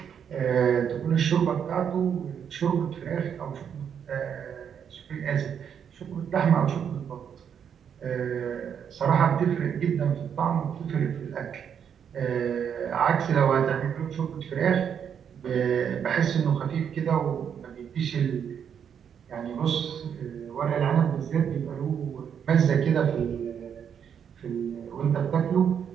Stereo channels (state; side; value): quieter; left; 8.0 dB